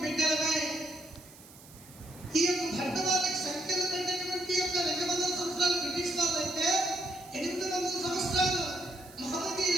బిడ్డలమే। ఈ యొక్క భరతమాతకి సంఖ్యలు పెట్టినటువంటి యొక్క 200 సంవత్సరాలు బ్రిటిష్ వాళ్ళైతే 800 సంవత్సరాలు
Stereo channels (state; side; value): noise; right; hiss, 21 dB below the sound